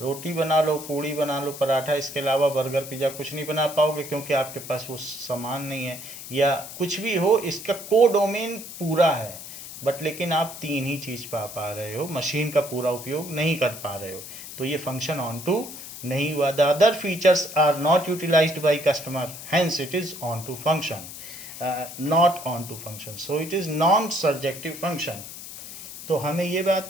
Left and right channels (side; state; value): left; noise; hiss, 12 dB below the sound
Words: बना लो, पूड़ी बना लो, पराठा, इसके अलावा बर्गर पिज़्ज़ा कुछ नहीं बना पाओगे, क्योंकि आपके पास वो सामान नहीं है। या कुछ भी हो, इसका कोडोमेन पूरा है, बट लेकिन आप 3 ही चीज़ पा रहे हो, मशीन का पूरा उपयोग नहीं कर पा रहे हो, तो ये फंक्शन ऑन टू नहीं हुआ। The other features are not utilised by customer, hence it is onto function, not onto function, so it is non surjective function. तो हमें ये बात